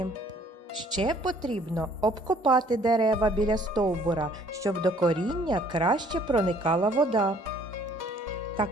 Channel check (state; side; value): normal; both; correlation 0.59